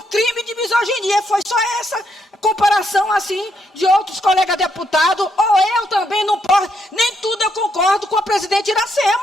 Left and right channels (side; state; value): both; normal; correlation 0.76